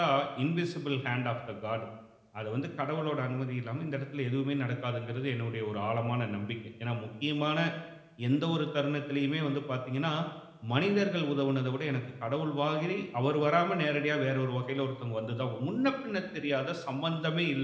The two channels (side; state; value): both; identical; correlation 1.00